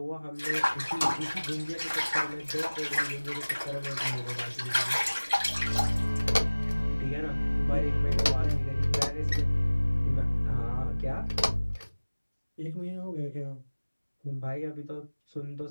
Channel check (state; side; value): inverted; both; correlation -1.00